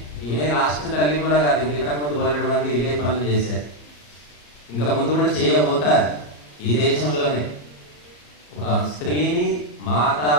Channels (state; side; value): late; right; 34 ms